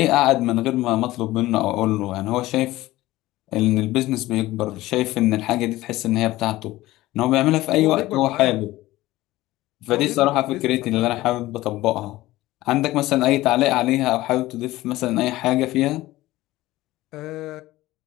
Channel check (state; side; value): quieter; right; 17.3 dB